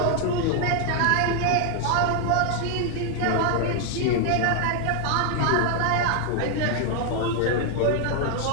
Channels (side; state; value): both; different; correlation 0.00